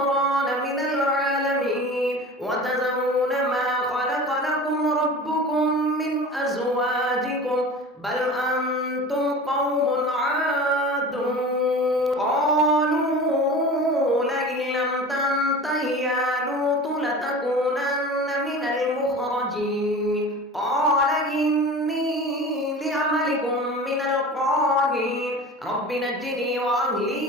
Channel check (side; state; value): both; normal; correlation 0.35